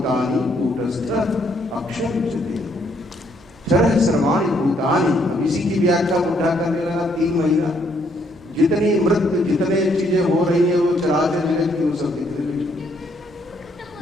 कूटस्थ अक्षर उच्यते। क्षर सर्वाणि भूतानि, इसी की व्याख्या उठा करने लगा 3 महीना। जितनी मृत्यु, जितने चीजें हो रही है वो चराचर जगत की, वो सब दिख रही है।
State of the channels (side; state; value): right; noise; hum, 27 dB below the sound